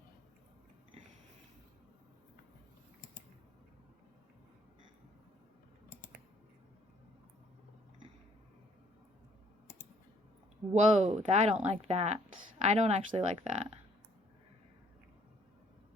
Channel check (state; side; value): normal; both; correlation 0.62